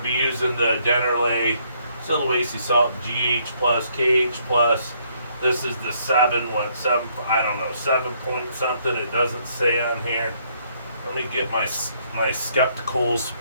be using the Dennerley Sulawesi Salt GH plus KH plus. This is the 7, I don't know, 7 point something. It doesn't say on here. Let me get my spectacles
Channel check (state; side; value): inverted; both; correlation -0.69